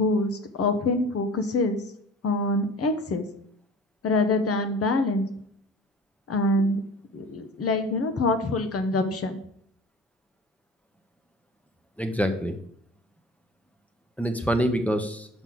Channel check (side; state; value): both; normal; correlation 0.40